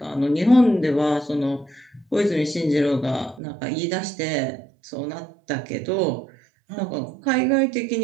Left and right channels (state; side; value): drops out; left; at 3.4 s